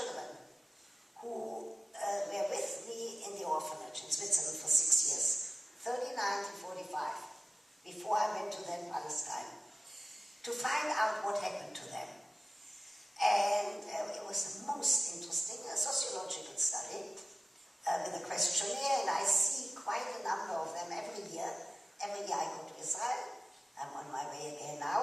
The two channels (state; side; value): normal; both; correlation 0.95